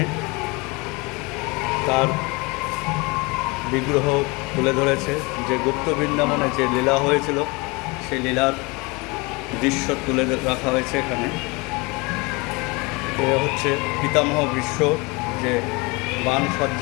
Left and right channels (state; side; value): quieter; right; 26.7 dB